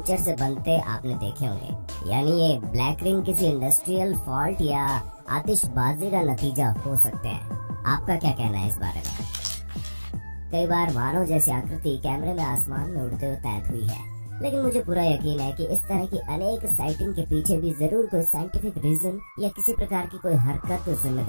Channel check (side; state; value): both; inverted; correlation -1.00